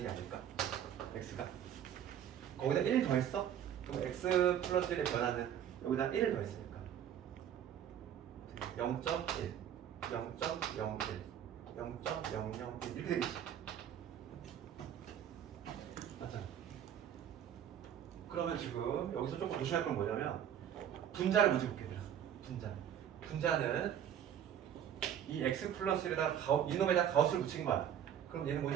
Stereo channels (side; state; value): left; quieter; 9.7 dB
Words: 아닐까? x가 거기다 1 더했어? 그럼 x 플러스 1의 변화는 여기다 1을 더했으니까 0.1, 0.01, 0.001 이렇게 되겠지. 맞잖아. 그러면 지금 여기서 조금 조심할 건 뭐냐면 분자를 먼저 볼게. 분자는 이 x 플러스 1에다 이놈에다 가우스를 붙인 거야. 그럼 얘는